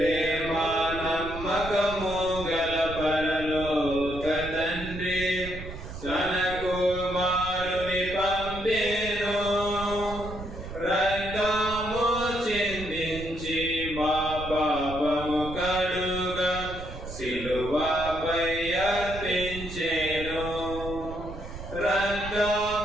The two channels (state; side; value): noise; right; rumble, 10 dB below the sound